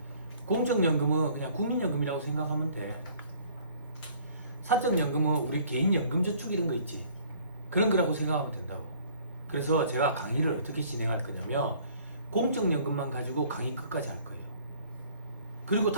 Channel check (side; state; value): both; inverted; correlation -0.56